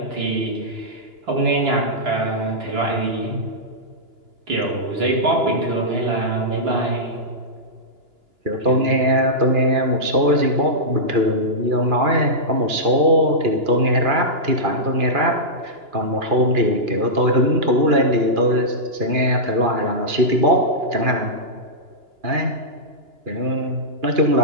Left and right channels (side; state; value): left; late; 2.9 ms